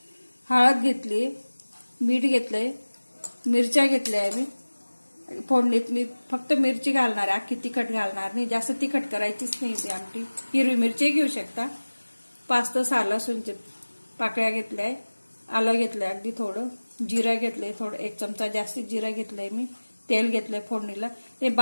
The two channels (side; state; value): both; inverted; correlation -1.00